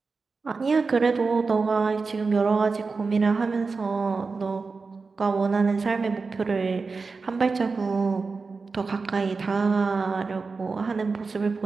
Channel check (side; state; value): left; quieter; 4.4 dB